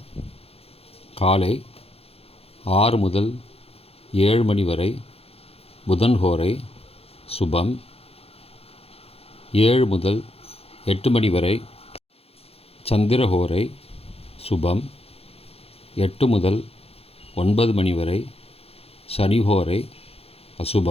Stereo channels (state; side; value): late; right; 0.29 ms